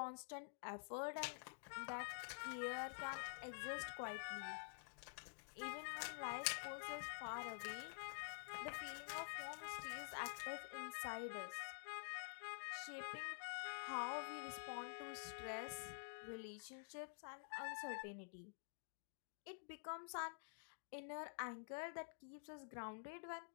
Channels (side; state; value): right; silent; digital silence